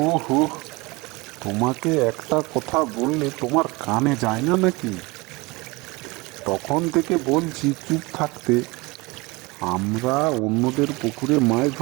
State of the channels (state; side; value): quieter; left; 24.4 dB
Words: হো, তোমাকে একটা কথা বললে তোমার কানে যায় না নাকি? তখন থেকে বলছি চুপ থাকতে। আমরা অন্যদের পুকুরে মাছ